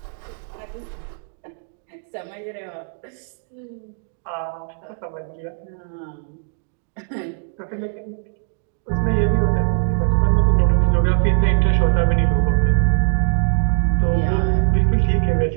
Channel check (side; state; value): left; silent; digital silence